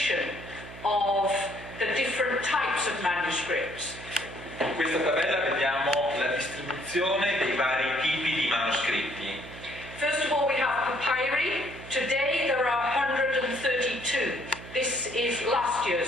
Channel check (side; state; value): right; noise; hum, 15 dB below the sound